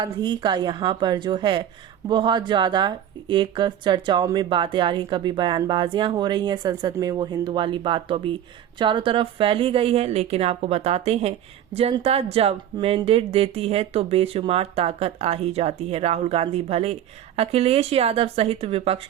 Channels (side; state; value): left; quieter; 10.6 dB